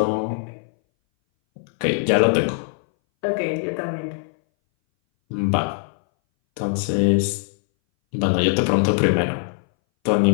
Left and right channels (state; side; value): silent; right; 61 dB below the other